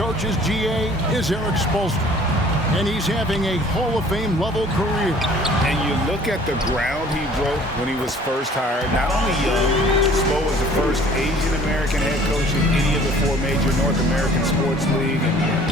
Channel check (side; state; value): both; normal; correlation 0.52